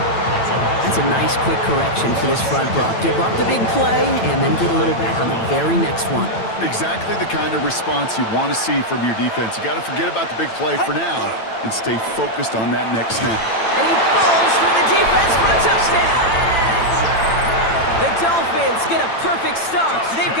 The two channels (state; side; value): late; right; 8.9 ms